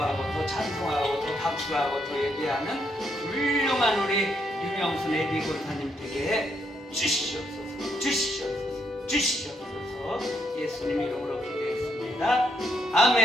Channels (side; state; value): both; normal; correlation 0.76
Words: 더 찬송하고 더 박수하고 더 예배하는 훌륭한 우리 유명순 애비 권사님에게 주시옵소서. 주시옵소서. 주시옵소서. 예수님 이름으로 기도했습니다.